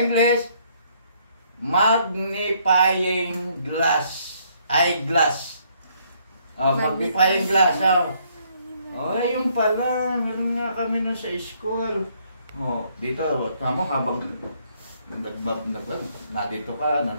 magnifying glass. Eyeglass. Magnifying glass. Yung pala. Meron nga kami nun sa school. Dito, tama habang nandito ka,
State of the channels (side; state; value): both; inverted; correlation -0.68